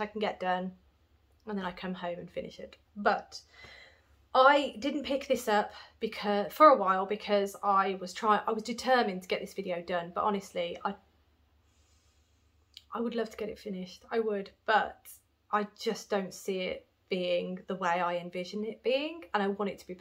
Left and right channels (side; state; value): both; identical; correlation 1.00